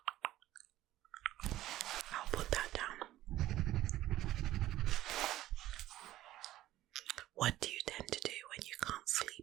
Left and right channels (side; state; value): left; quieter; 14.7 dB